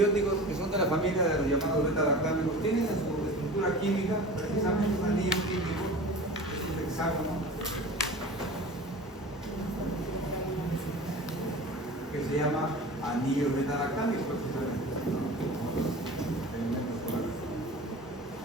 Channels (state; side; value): normal; both; correlation 0.37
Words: que son de la familia de los llamados beta-lactámicos tienen en su estructura química precisamente un anillo químico, es un hexágono, que se llama anillo beta-lactámico precisamente.